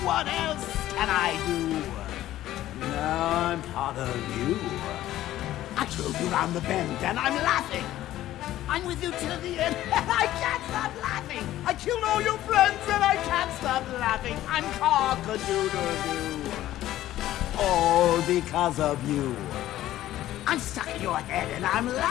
What else can I do? Now I'm part of you. I drove you round the bend and I'm laughing. I'm with you till the end and I can't stop laughing. I killed all your friends and I can't stop laughing. I'm cock-a-doodle-doo. All because of you. I'm stuck in your head and I'm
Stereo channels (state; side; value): quieter; right; 14.0 dB